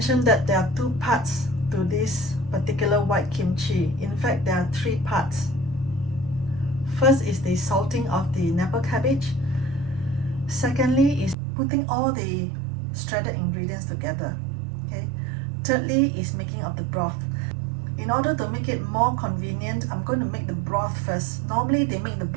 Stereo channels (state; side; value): drops out; left; at 11.4 s